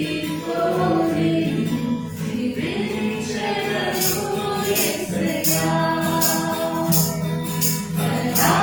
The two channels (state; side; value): identical; both; correlation 1.00